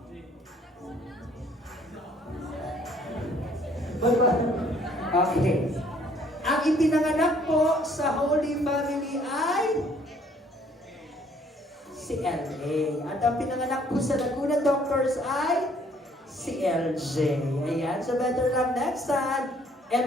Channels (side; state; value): both; normal; correlation 0.61